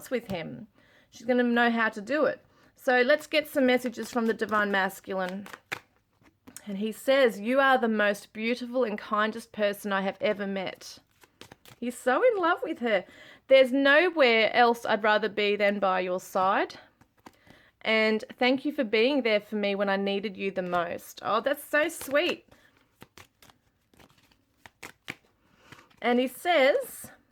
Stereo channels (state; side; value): identical; both; correlation 1.00